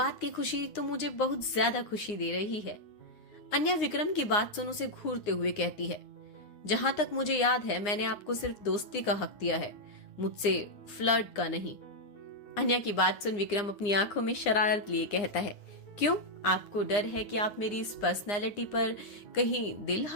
की खुशी तो मुझे बहुत ज्यादा खुशी दे रही है। अन्या विक्रम की बात सुन उसे घूरते हुए कहती है, जहां तक मुझे याद है मैंने आपको सिर्फ दोस्ती का हक दिया है, मुझसे फ्लर्ट का नहीं। अन्या की बात सुन विक्रम अपनी आंखों में शरारत लिए कहता है, क्यों? आपको डर है कि आप मेरी इस पर्सनैलिटी पर कहीं दिल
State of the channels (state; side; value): late; right; 9.7 ms